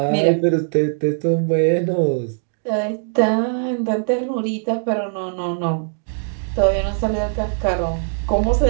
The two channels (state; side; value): silent; left; digital silence